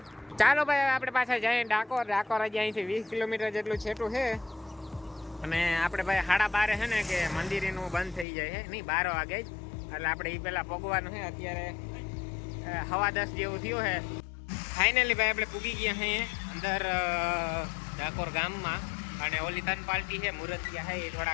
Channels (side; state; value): right; drops out; at 8.2 s